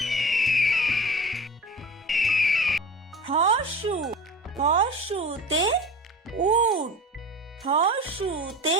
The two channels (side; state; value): both; normal; correlation 0.34